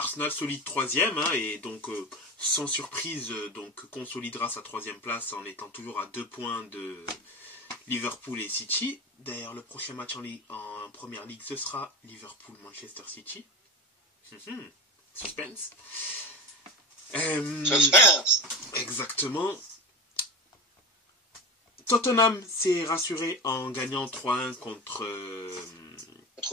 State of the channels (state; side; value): normal; both; correlation 0.25